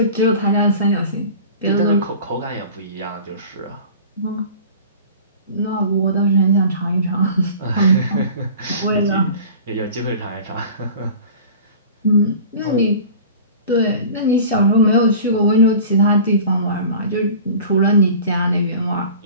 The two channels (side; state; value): both; inverted; correlation -0.41